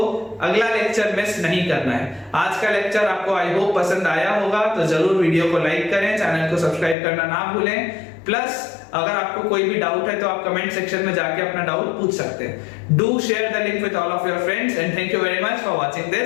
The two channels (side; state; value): right; drops out; at 7.0 s